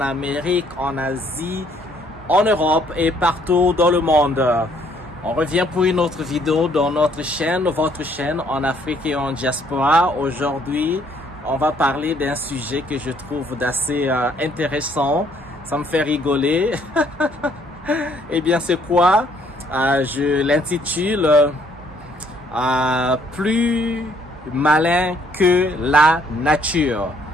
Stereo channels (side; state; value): both; normal; correlation 0.65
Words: Amérique, en Asie, en Europe et partout dans le monde. On revient pour une autre vidéo dans notre chaîne, votre chaîne en Afrique et en diaspora. Aujourd'hui, on va parler d'un sujet que je trouve d'assez intéressant. Ça me fait rigoler. Eh bien, c'est quoi? Je l'intitule plus malin que la nature.